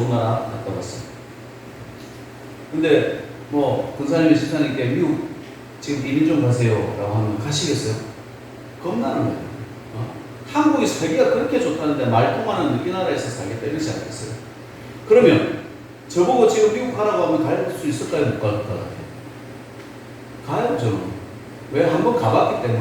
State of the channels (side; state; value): both; identical; correlation 1.00